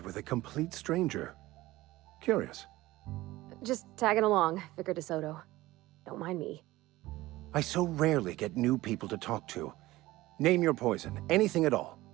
with a complete stranger. Curious. Just tagging along, Vicar de Soto. Don't mind me. I so rarely get new people to talk to. Name your poison, anything at all.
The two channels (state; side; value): quieter; left; 17.9 dB